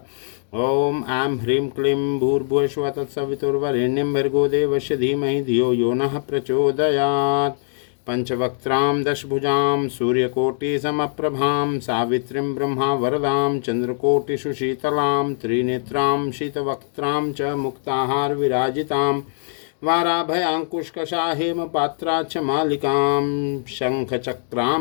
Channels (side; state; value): right; silent; digital silence